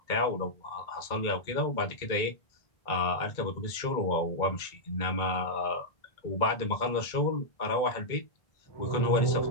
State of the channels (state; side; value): late; right; 2.2 ms